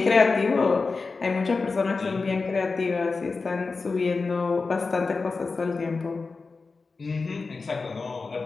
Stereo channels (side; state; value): right; quieter; 4.2 dB